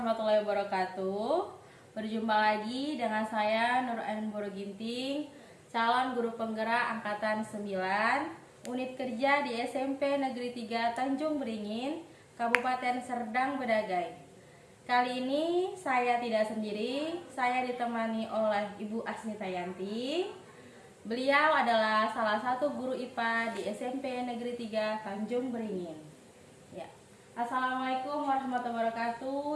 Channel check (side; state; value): both; identical; correlation 1.00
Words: warahmatullahi wabarakatuh. Berjumpa lagi dengan saya Nur Ain Ginting, calon guru penggerak angkatan 9, unit kerja di SMP Negeri 3 Tanjung Beringin, Kabupaten Serdang Bedagai. Kali ini saya tidak sendiri, saya ditemani oleh Ibu Asnita Yanti. Beliau adalah salah satu guru IPA di SMP Negeri 3 Tanjung Beringin. Assalamualaikum warahmatullahi